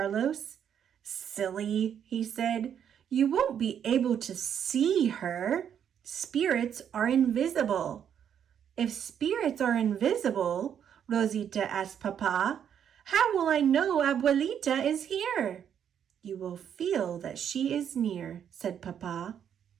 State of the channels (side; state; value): left; quieter; 8.8 dB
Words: Silly, he said. You won't be able to see her. Spirits are invisible. If spirits are invisible, Rosita asked Papa, how will I know Abuelita is here? You will feel that she is near, said Papa.